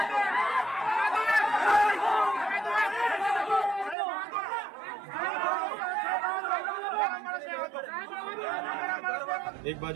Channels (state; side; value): drops out; left; at 4.0 s